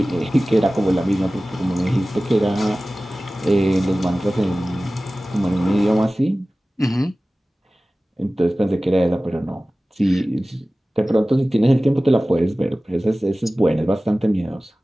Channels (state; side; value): normal; both; correlation 0.97